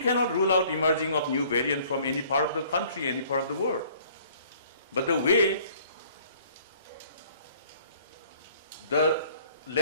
rule out emerging of new variant from any part of the country, any part of the world. But the way the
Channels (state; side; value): inverted; both; correlation -0.56